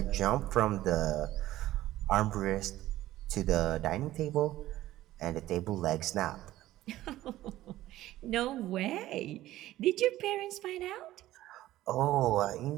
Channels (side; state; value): left; quieter; 15.2 dB